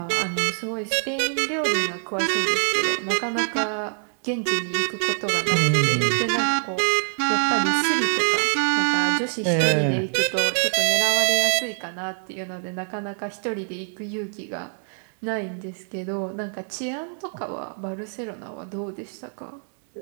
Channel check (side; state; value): left; silent; 62 dB below the other